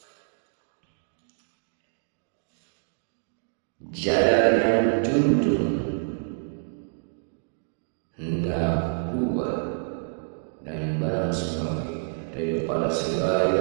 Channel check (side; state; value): left; silent; digital silence